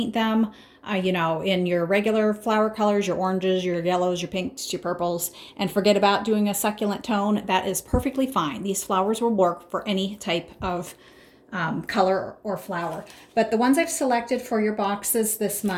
them, in your regular flower colors, your oranges, your yellows, your pinks, your purples, and forget about doing a succulent tone, that is perfectly fine. These flowers will work for any type of color or flower. But the ones I've selected for your boxes this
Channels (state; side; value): identical; both; correlation 1.00